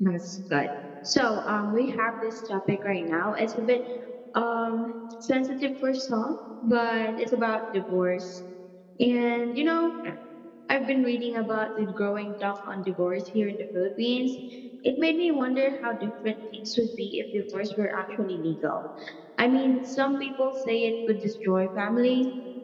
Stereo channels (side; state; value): both; identical; correlation 1.00